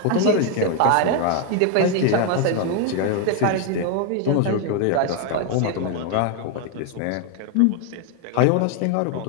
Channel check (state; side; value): different; both; correlation 0.01